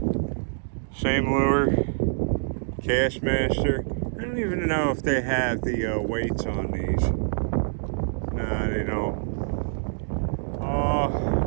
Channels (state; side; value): silent; left; digital silence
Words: Same lure, Castmaster. I don't even know if they have the weights on these. Nah, they don't.